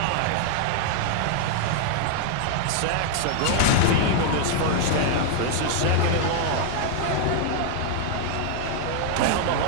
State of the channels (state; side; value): different; both; correlation 0.00